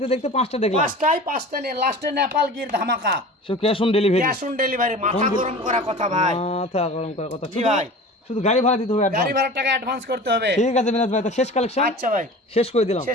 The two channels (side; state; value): both; normal; correlation 0.37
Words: দেখতে পাঁচটা দেখলাম পাঁচটা নিয়ে লাস্টে নেপাল গির ধামাকা। So cash on delivery cash on delivery, মাথা গরম করা কথা ভাই। মাথা গরম করার কথা জি ভাই। শুধু গাড়ি ভাড়া দিতে হবে গাড়ি অ্যাডভান্স ভাড়ার টাকা অ্যাডভান্স করতে হবে। ঠিক আছে মিনাজ ভাই তো শেষ কালেকশন আচ্ছা ভাই, শেষ করে দিলাম